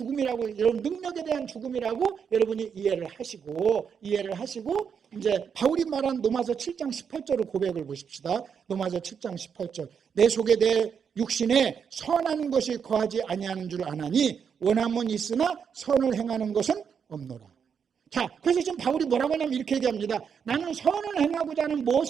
여러분 능력에 대한 죽음이라고 여러분이 이해를 하시고 이제 바울이 말한 로마서 7장 18절을 고백을 보십시다. 로마서 7장 18절. 내 속에 내 육신에 선한 것이 거하지 아니하는 줄 아나니 원함은 있으나 선을 행하는 것은 없노라. 자, 그래서 지금 바울이 뭐라고 하냐면 이렇게 얘기합니다. 나는 선을 행하고자 하는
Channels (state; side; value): quieter; left; 7.0 dB